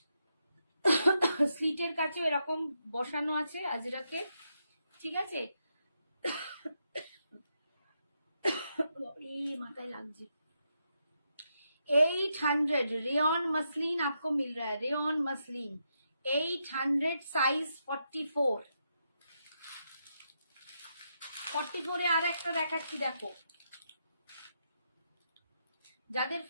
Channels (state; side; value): inverted; both; correlation -0.82